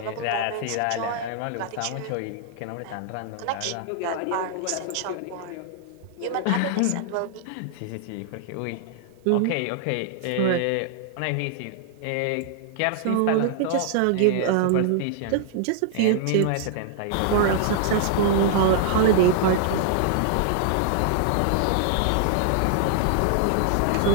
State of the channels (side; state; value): both; different; correlation 0.00